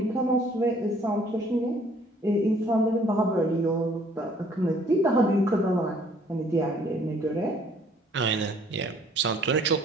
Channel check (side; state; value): both; normal; correlation 0.59